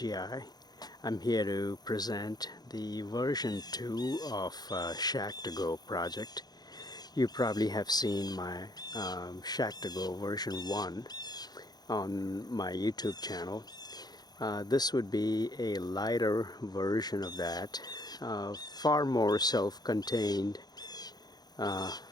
I'm here to present the version 2 of Shack2Go project. You probably have seen my Shack2Go version 1 on my YouTube channel. This would be a lighter version of that, far more self-contained. Pardon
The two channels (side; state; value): right; late; 0.19 ms